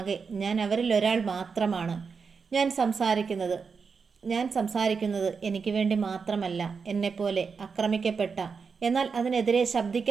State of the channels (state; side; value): quieter; left; 5.4 dB